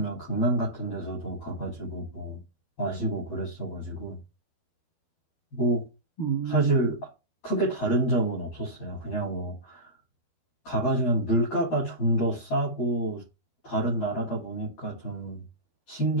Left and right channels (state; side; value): late; right; 12 ms